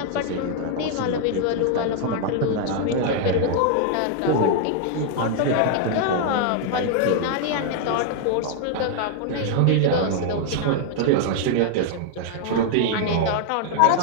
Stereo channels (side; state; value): both; different; correlation 0.00